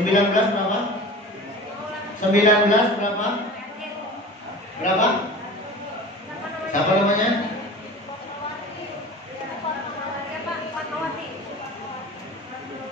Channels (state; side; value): normal; both; correlation 0.37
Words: berapa? 19 berapa? Berapa? Siapa namanya?